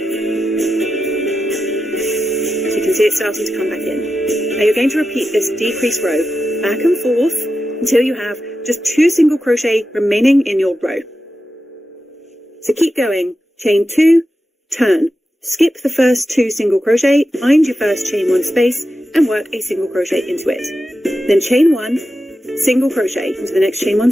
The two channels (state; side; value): normal; both; correlation 0.91